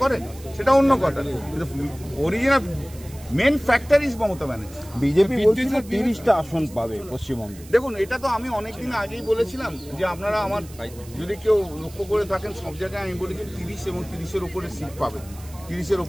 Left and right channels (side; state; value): right; noise; hiss, 20 dB below the sound